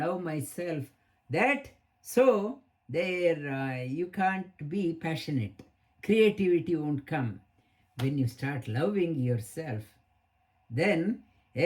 myself. That so there you can't be passionate. Creativity won't come. When you start loving yourself, then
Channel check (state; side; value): identical; both; correlation 1.00